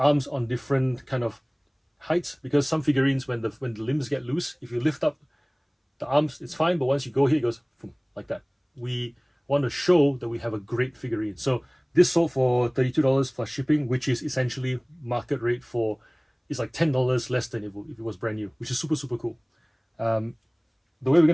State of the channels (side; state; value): both; identical; correlation 1.00